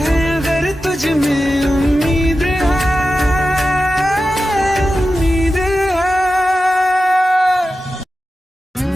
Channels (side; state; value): both; normal; correlation 0.93